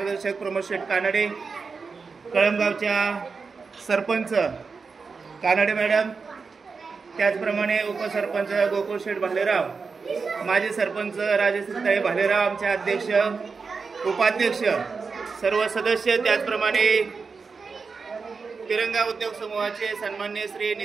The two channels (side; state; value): left; quieter; 4.9 dB